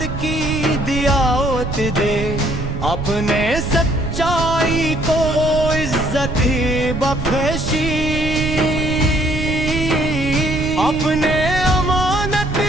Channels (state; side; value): noise; right; rumble, 5 dB below the sound